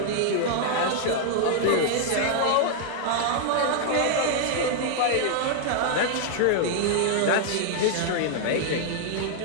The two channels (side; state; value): both; different; correlation -0.01